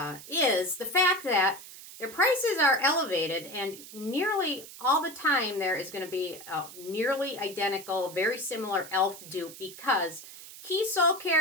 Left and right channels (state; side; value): noise; right; hiss, 15 dB below the sound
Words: is the fact that their prices are elevated, and nearly all the time there is going to be a nearly identical, very similar e.l.f. dupe, because Keys Soul